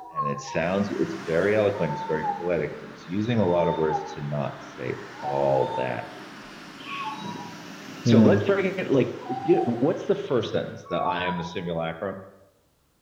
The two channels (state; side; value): identical; both; correlation 1.00